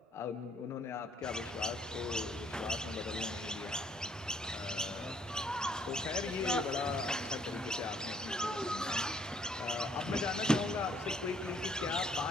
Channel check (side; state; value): both; normal; correlation 0.65